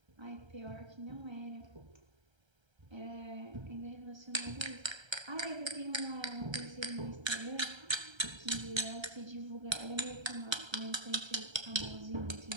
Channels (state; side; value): late; left; 1.3 ms